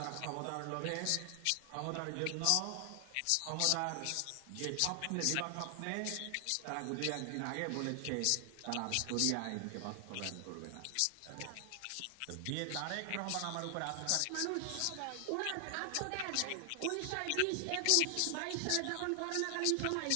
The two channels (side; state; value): both; different; correlation 0.00